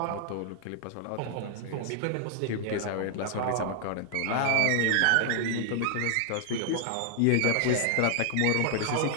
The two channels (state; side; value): different; both; correlation 0.00